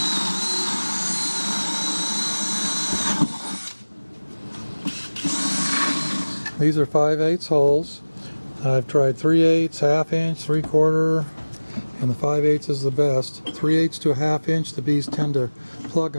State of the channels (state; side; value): inverted; both; correlation -1.00